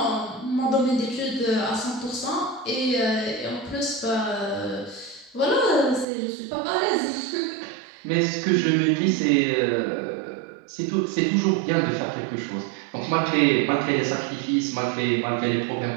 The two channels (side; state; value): left; drops out; at 6.1 s